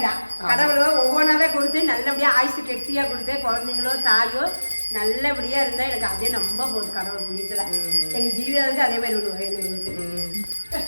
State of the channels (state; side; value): inverted; both; correlation -1.00